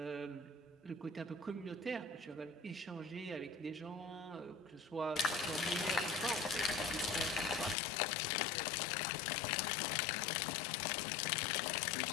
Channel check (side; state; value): right; drops out; at 7.8 s